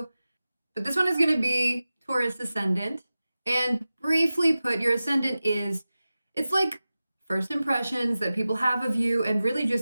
but this one is gonna be Taurus Ascendant. And briefly put, your Ascendant it's like first impressions that people have of you and really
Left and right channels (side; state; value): both; inverted; correlation -0.96